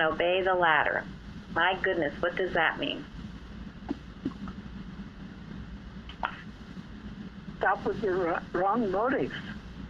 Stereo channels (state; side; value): identical; both; correlation 1.00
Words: obey the latter. My goodness, what does that mean? Stop with your wrong motives